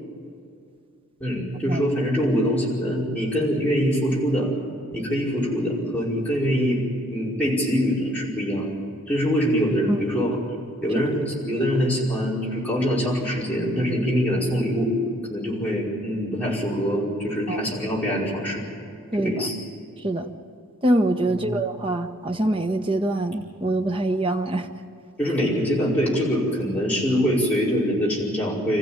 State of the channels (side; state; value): both; normal; correlation 0.65